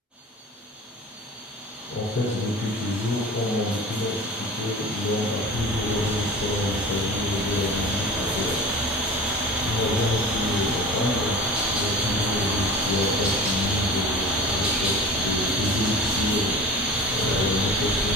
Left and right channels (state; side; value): normal; both; correlation 0.37